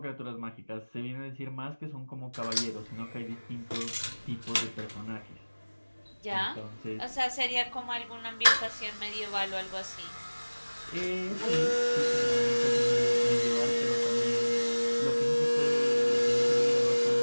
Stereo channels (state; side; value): inverted; both; correlation -1.00